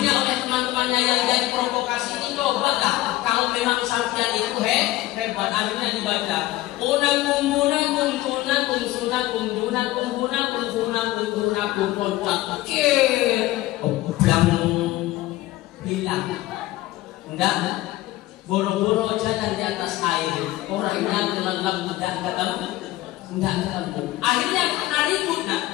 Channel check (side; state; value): right; quieter; 16.8 dB